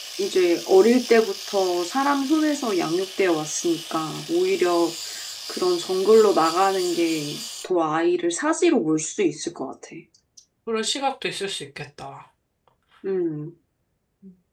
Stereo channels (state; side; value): identical; both; correlation 1.00